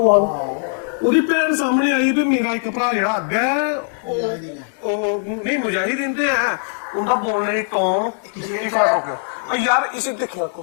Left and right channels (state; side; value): silent; right; digital silence